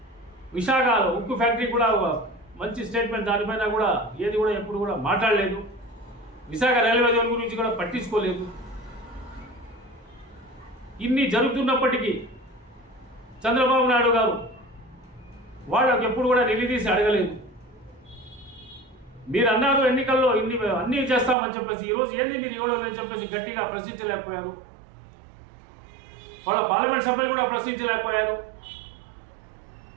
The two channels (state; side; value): drops out; left; at 21.4 s